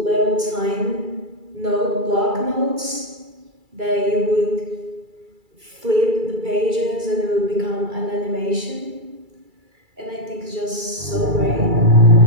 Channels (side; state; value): left; late; 2.3 ms